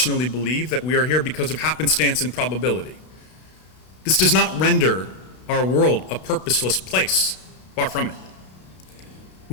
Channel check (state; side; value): late; right; 32 ms